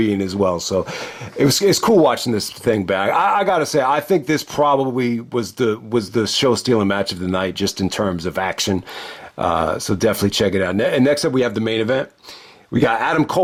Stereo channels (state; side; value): identical; both; correlation 1.00